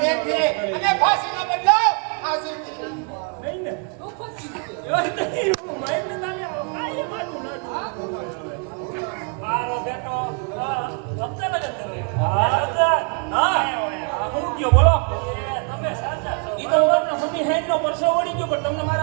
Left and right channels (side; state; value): left; quieter; 38.2 dB